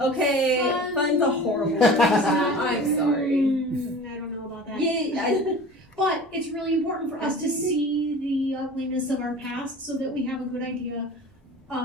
okay, fun's a horrible word. I'm sorry. I don't know about that. Yeah, but it's really important for us to see the ugliness of our past so that we have a good idea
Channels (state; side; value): normal; both; correlation 0.39